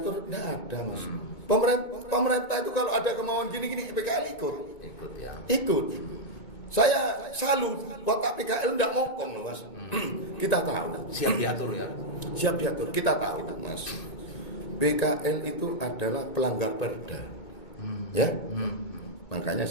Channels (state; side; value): late; right; 2.2 ms